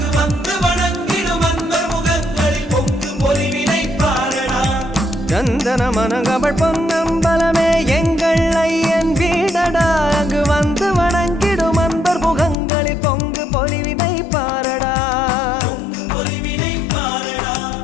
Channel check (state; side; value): drops out; right; at 12.6 s